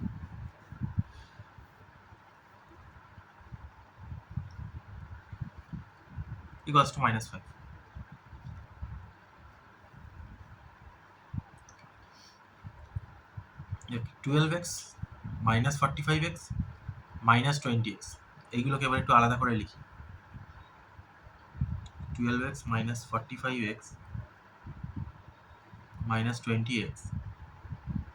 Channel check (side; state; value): both; identical; correlation 1.00